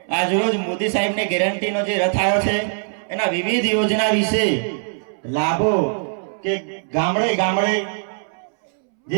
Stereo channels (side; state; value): left; silent; 65 dB below the other